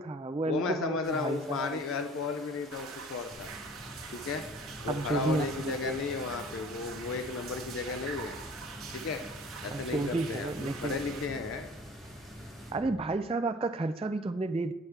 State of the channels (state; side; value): normal; both; correlation 0.48